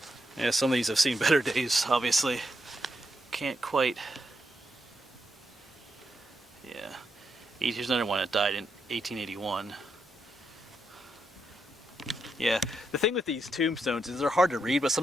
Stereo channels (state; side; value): normal; both; correlation 0.82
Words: Yeah, some of these have seen better days, obviously. Can't quite. Yeah. Here's another one that died in 1881. Yeah, the thing with these tombstones is they're hard to read, but